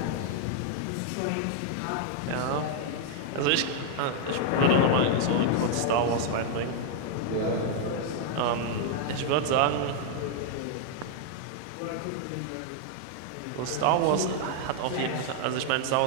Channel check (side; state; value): both; different; correlation 0.00